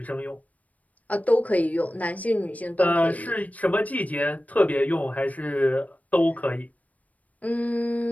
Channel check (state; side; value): late; right; 0.071 ms